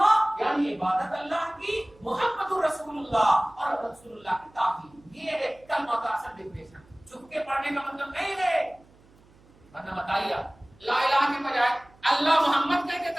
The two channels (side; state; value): right; noise; hum, 28 dB below the sound